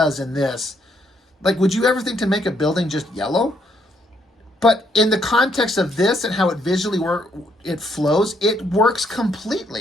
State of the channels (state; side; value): normal; both; correlation 0.72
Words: in this. Like, would you ever think to make a building just yellow? But in the context of this and how it visually it flows, it works